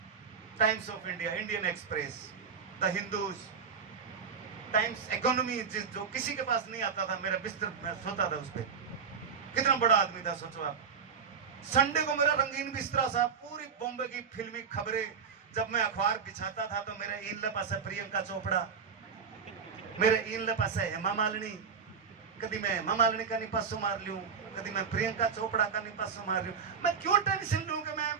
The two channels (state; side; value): quieter; left; 6.3 dB